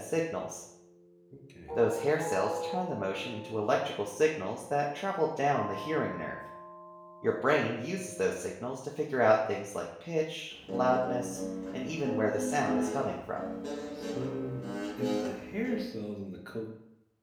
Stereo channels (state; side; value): identical; both; correlation 1.00